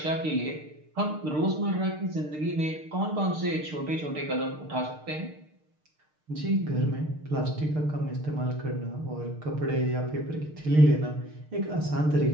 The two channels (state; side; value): late; left; 6.6 ms